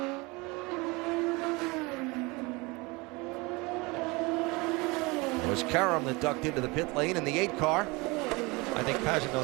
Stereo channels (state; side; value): quieter; left; 25.4 dB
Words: It was Karam that ducked into the pit lane in the 8 car. I think